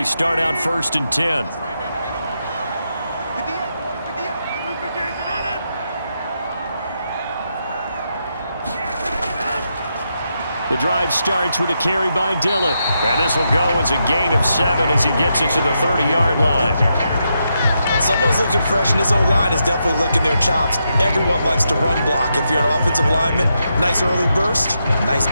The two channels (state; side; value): inverted; both; correlation -0.83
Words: start out 1st and 10. The drive starts with a carry by Dillon. And this will go as a gain of 7 as he gets it to the 30-yard line. Someone's looking fresh, and his O-line is definitely licking their chops. Everyone likes to run block. If you're an offensive lineman, nice early burst, nice